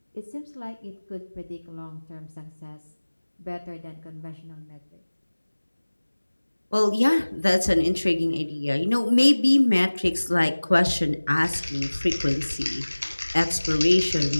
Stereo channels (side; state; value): both; inverted; correlation -1.00